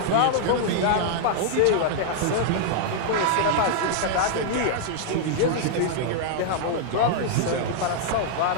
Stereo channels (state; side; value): different; both; correlation -0.01